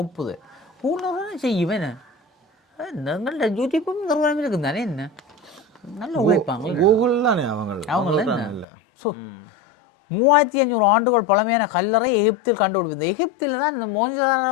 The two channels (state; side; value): drops out; right; at 8.7 s